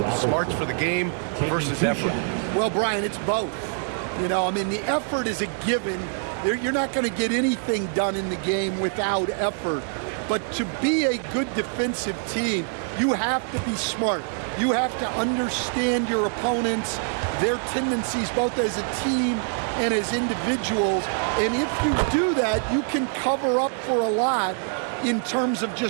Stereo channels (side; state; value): left; silent; 62 dB below the other